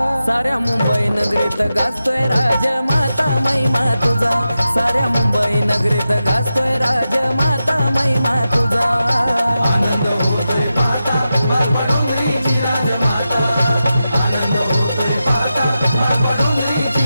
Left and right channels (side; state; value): both; inverted; correlation -0.91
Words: साऱ्या मुंबई नगरीत गाजतोय राजमाता महिमा तुझा, साऱ्या मुंबई नगरीत गाजतोय राजमाता महिमा तुझा। आनंद होतोय पाहता डोंगरीची राजमाता, आनंद होतोय पाहता